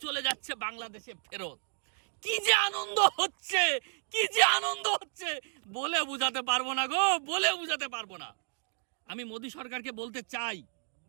চলে যাচ্ছে বাংলাদেশে ফেরত। কি যে আনন্দ হচ্ছে, কি যে আনন্দ হচ্ছে, বলে বুঝাতে পারবো না গো, বলে বুঝাতে পারবো না। আমি মোদী সরকারকে বলতে চাই,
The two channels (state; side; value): silent; left; digital silence